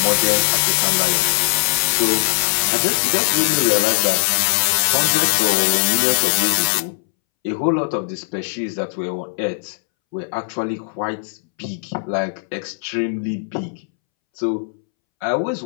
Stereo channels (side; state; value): right; silent; 65 dB below the other